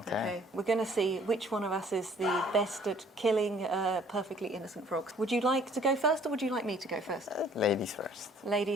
We're going to see which one of us is the best at killing perfectly innocent frogs. Would you like to go first, or would you like me to go first? Ladies first.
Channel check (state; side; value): normal; both; correlation 0.57